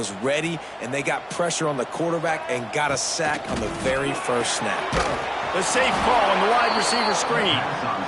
ready, and they got pressure on the quarterback and got a sack on the very first snap. The safe call on the wide receiver screen.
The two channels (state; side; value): identical; both; correlation 1.00